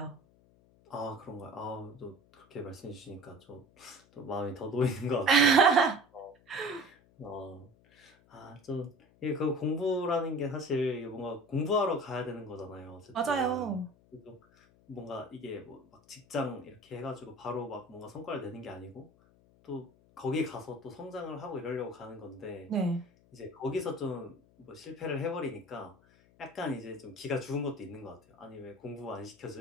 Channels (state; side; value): noise; left; hum, 29 dB below the sound